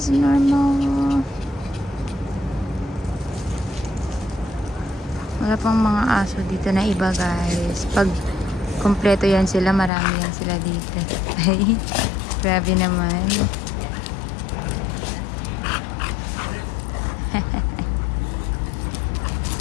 normal. Wala pang mga aso dito na iba, guys. Pag kompleto yan sila, marami yan sila dito. Ay, grabe naman.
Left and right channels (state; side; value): drops out; right; at 9.9 s